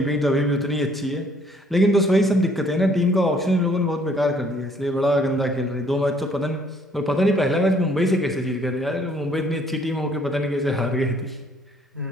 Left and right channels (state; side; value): normal; both; correlation 0.62